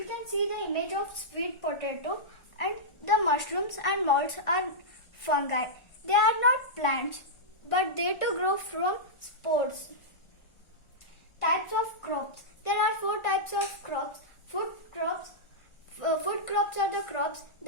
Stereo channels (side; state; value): right; late; 1.4 ms